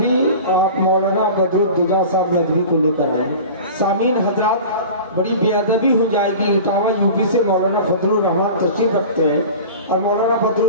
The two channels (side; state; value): both; inverted; correlation -0.37